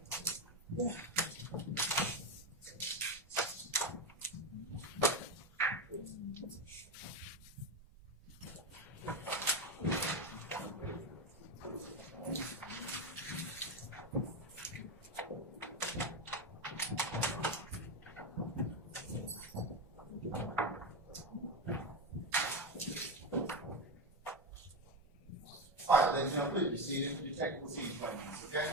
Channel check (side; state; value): both; normal; correlation 0.14